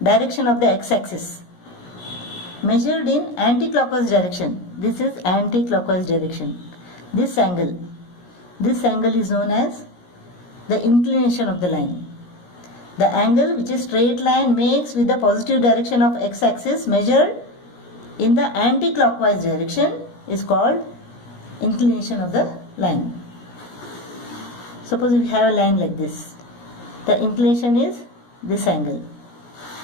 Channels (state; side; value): late; right; 17 ms